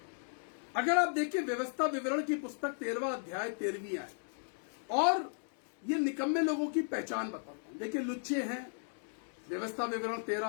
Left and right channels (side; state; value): right; silent; digital silence